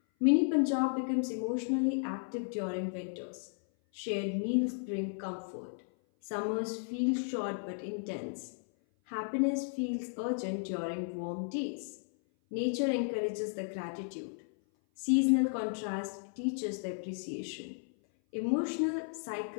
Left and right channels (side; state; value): right; silent; 55 dB below the other